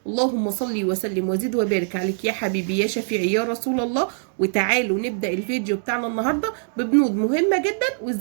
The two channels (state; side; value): silent; left; digital silence